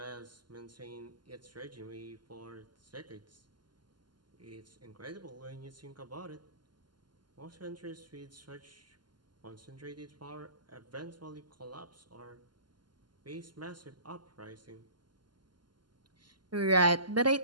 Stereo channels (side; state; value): left; late; 0.71 ms